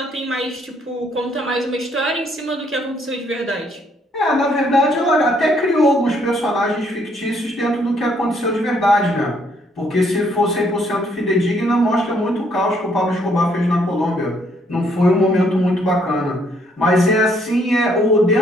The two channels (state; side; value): normal; both; correlation 0.68